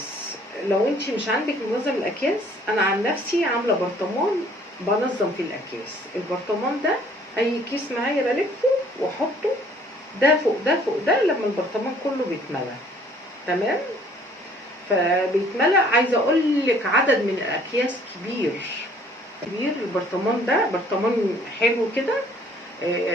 لو انت مش عندك منظم الاكياس، انا عن نفسي عامله برطمان بنظم في الاكياس. البرطمان ده اي كيس معايا بلفه واحطه ده فوق ده فوق ده، لما البرطمان كله بيتملى. تمام. فبيتملى، عايزه اقول لك عدد من الاكياس كبير. البرطمان ده برطمان حلو كده،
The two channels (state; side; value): normal; both; correlation 0.57